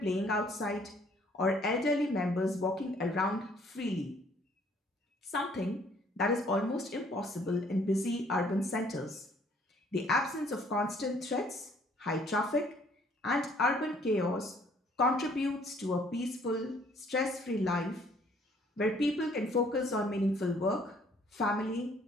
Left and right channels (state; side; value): normal; both; correlation 0.61